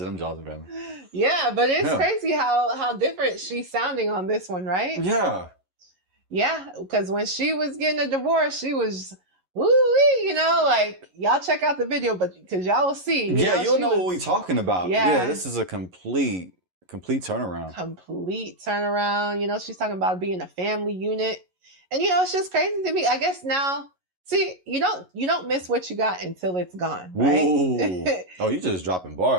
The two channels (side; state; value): left; late; 11 ms